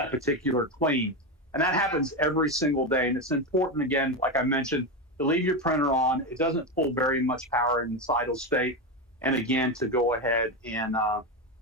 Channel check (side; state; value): both; normal; correlation 0.14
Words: particular clean. And that happens every single day. And it's important, again, like I mentioned, to leave your printer on. It doesn't pull very much power in its idle state. And again, to go ahead and